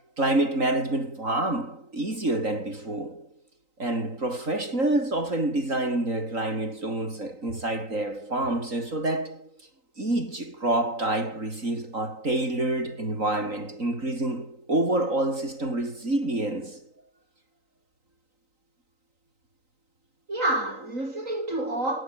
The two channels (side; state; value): left; late; 3.9 ms